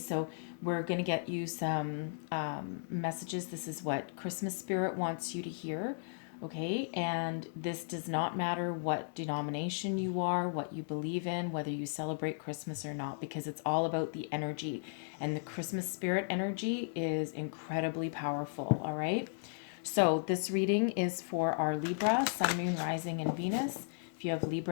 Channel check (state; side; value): silent; right; digital silence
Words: we're going to get you some messages. This is what Christmas Spirit wants you to hear. Okay, and this does not matter what denomination you are, what you believe in, whether you celebrate Christmas or not, because it's all about the energy. And the Christmas Spirit energy is incredibly powerful. All right, so this reading is for our Libra, Sun, Moon, Rising, and Venus. If you have